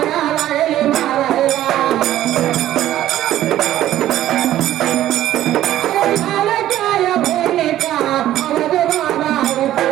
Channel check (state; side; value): quieter; left; 13.2 dB